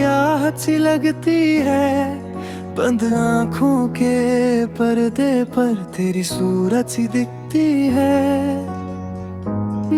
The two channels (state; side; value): identical; both; correlation 1.00